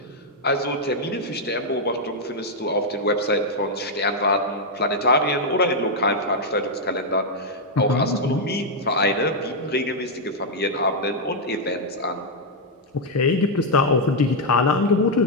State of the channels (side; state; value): both; normal; correlation -0.02